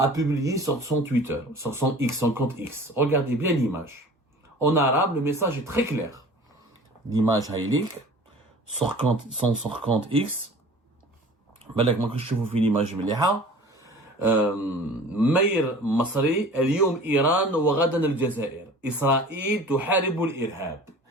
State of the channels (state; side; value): normal; both; correlation 0.43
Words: publié sur son Twitter, sur son compte X. Regardez bien l'image. En arabe, le message est très clair. L'image Haïlik, sur son compte X. بالك ما كنتش تشوفوا في l'image مليحة. مير مصري اليوم إيران وغدا الجزائر. إسرائيل تحارب الإرهاب.